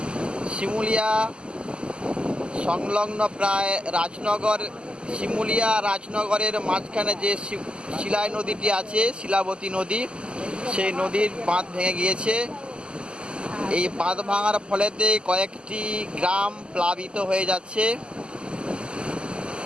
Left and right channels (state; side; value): late; left; 0.050 ms